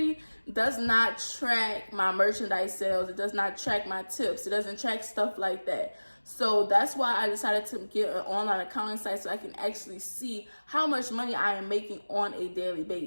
does not track my merchandise sales. It does not track my tips. It doesn't track stuff like that. So that's why I decided to get an online accounting site, so I can actually see how much money I am making on a daily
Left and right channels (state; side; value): inverted; both; correlation -1.00